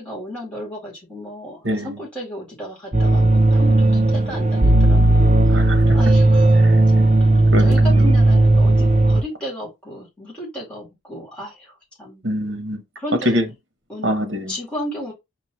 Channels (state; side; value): normal; both; correlation 0.89